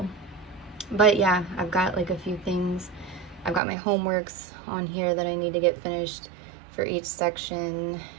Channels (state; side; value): drops out; left; at 3.6 s